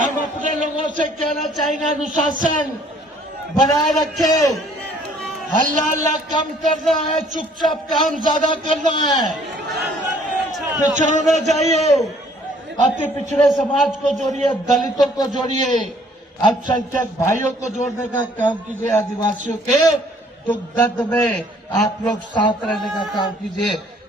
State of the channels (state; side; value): normal; both; correlation 0.59